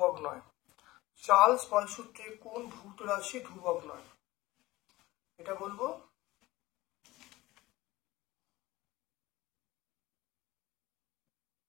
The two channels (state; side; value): quieter; right; 18.7 dB